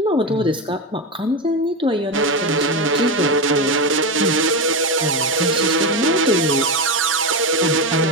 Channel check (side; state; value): both; normal; correlation 0.14